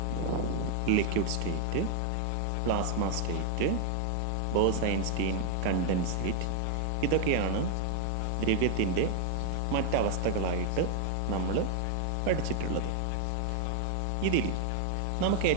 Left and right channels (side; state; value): both; different; correlation 0.00